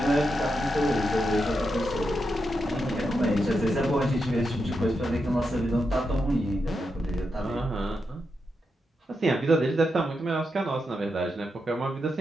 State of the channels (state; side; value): normal; both; correlation 0.85